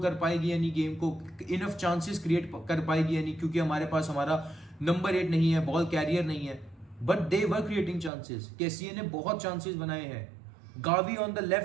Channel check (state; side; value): drops out; left; at 8.1 s